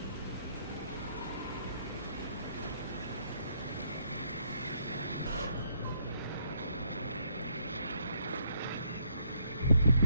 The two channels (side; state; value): both; inverted; correlation -0.71